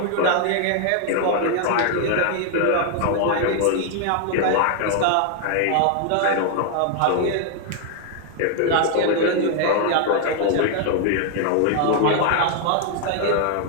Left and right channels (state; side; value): different; both; correlation 0.00